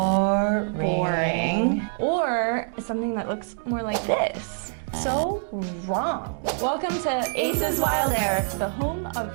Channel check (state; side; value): silent; left; 62 dB below the other